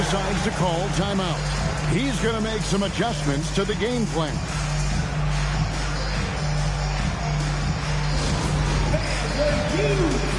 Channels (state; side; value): identical; both; correlation 1.00